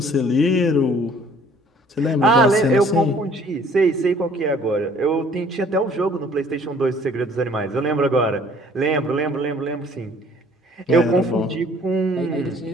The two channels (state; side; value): normal; both; correlation 0.57